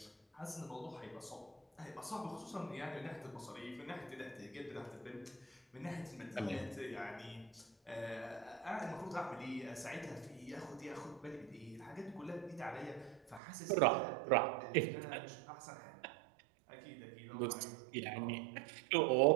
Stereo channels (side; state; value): left; drops out; at 13.4 s